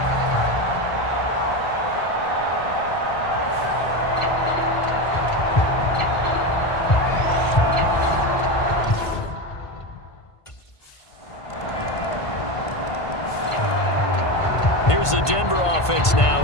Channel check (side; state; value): right; late; 1.5 ms